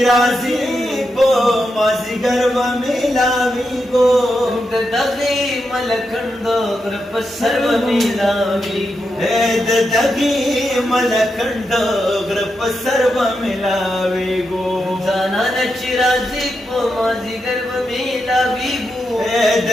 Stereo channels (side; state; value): both; normal; correlation 0.86